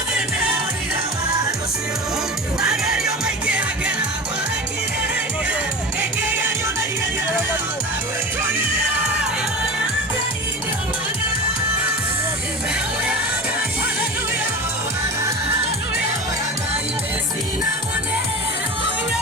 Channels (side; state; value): both; normal; correlation 0.30